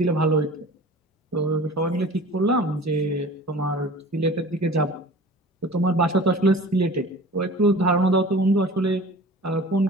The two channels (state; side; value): normal; both; correlation 0.41